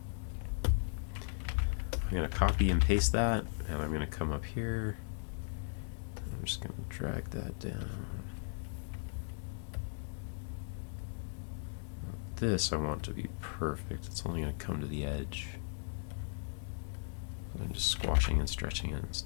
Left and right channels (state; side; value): silent; right; digital silence